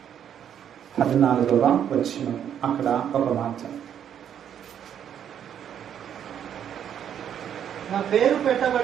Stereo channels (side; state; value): left; quieter; 9.2 dB